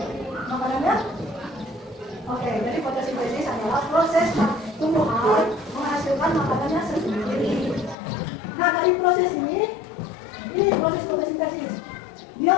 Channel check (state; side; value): drops out; right; at 8.0 s